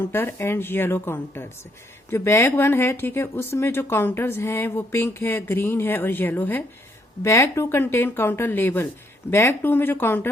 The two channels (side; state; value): both; normal; correlation 0.71